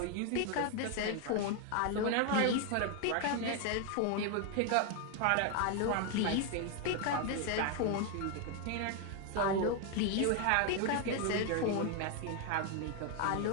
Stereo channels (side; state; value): both; different; correlation 0.01